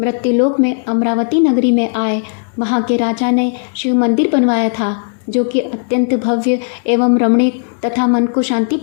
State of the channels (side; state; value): right; silent; 65 dB below the other